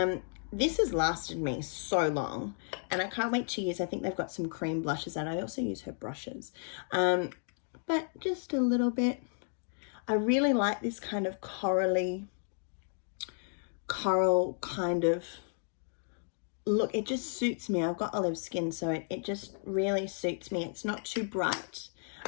This has lasted me so long, and I can't wait to use. I think they've got some cream blushes, and I also use her brushes. But just a little bit. I really like this kind of coral kind of look. It just suits me. I've got olive skin, so it just really suits me. It's not too bright,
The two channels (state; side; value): silent; right; 56 dB below the other